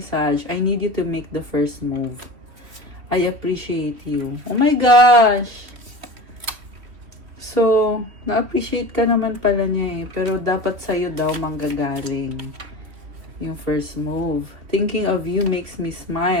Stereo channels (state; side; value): late; left; 2.9 ms